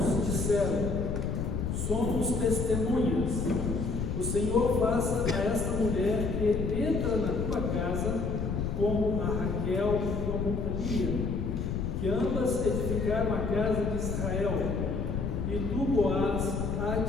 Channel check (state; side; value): noise; left; rumble, 1 dB below the sound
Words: disseram: somos testemunhas. O Senhor faça a esta mulher que entra na tua casa como a Raquel e como a Lia, que ambas edificaram a casa de Israel, e tu, Boaz,